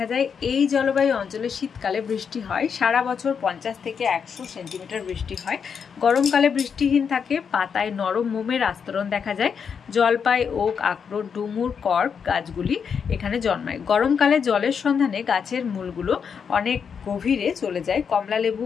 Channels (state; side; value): quieter; right; 6.7 dB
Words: যায়। এই জলবায়ু অঞ্চলে শীতকালে বৃষ্টি হয়, সারা বছর 50 থেকে 100 সেন্টিমিটার বৃষ্টি হয়। গরমকালে বৃষ্টিহীন থাকে, পাতায় নরম মোমের আস্তরণ দেখা যায়। জলপাই, ওক, আখরোট, ডুমুর, কর্ক গাছগুলি এখানে জন্মায়। গরমকালে জলের সন্ধানে গাছের মূলগুলো অনেক গভীরে চলে যায়। কমলালেবু,